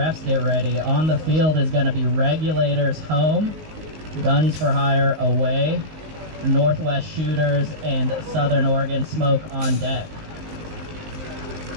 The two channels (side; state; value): left; late; 19 ms